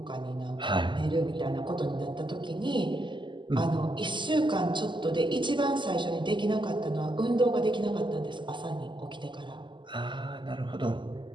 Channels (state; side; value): late; left; 0.23 ms